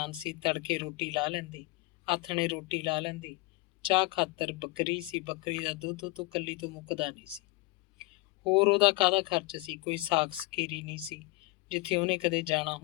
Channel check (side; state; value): right; quieter; 21.6 dB